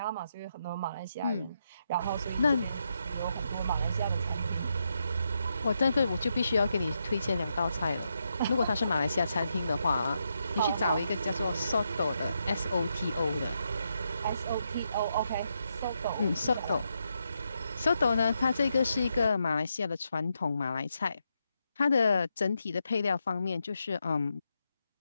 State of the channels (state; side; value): inverted; both; correlation -0.82